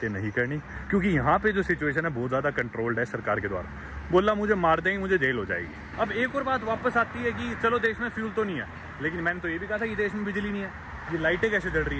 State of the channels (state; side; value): identical; both; correlation 1.00